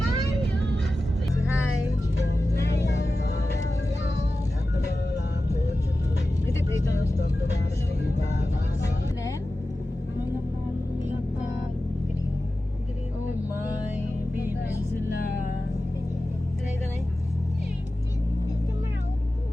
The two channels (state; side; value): normal; both; correlation 0.95